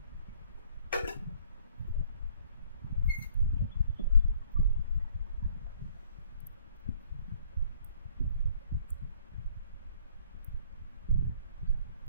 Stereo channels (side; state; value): both; inverted; correlation -0.61